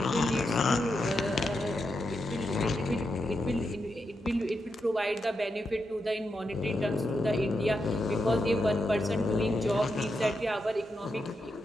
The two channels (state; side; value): normal; both; correlation 0.85